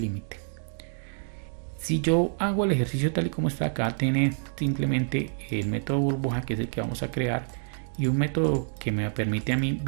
límite. Si yo hago el ejercicio tal y como está acá, tiene simplemente el método burbuja, que es el que vamos a crear, y un método que me permite a mí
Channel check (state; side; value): silent; left; 60 dB below the other